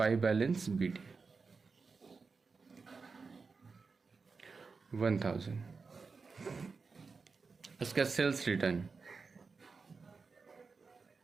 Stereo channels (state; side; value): quieter; left; 4.7 dB